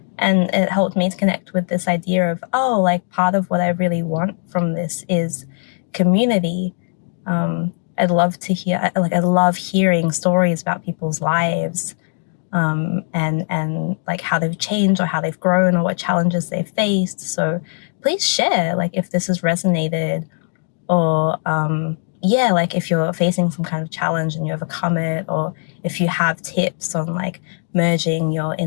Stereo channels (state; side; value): silent; right; digital silence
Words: and it helped me to connect with this idea of, oh, like part of what I really want from this is community. I'd love to hear, like, I love hearing stories about people's lives, and like how they've changed or how they've grown or what challenges they've faced. So please share, like, if this has resonated, or yeah, like if you're facing some kind of challenge and you overcome it, or if you have tips on like merging your